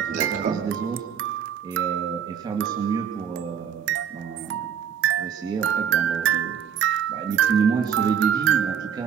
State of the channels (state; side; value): quieter; left; 8.1 dB